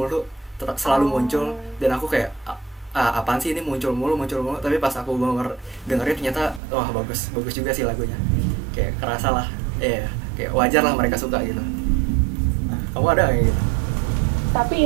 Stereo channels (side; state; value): left; drops out; at 6.6 s